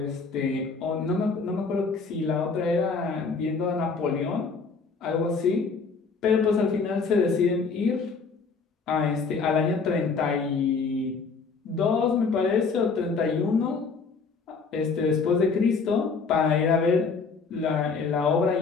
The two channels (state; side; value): quieter; right; 4.8 dB